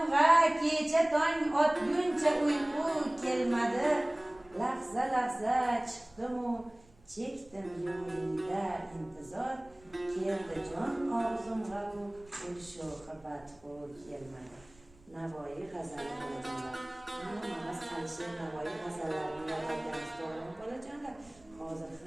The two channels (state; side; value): noise; right; rumble, 28 dB below the sound